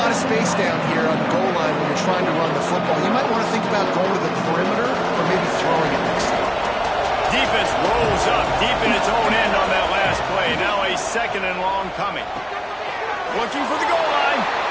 of space down here on the goal line when you're trying to run the football. You might want to think about going to the perimeter or maybe throwing it next time. Defense rolls up deep in its own end on that last play. Now a 2nd and long coming. Looking for the goal line.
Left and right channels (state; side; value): identical; both; correlation 1.00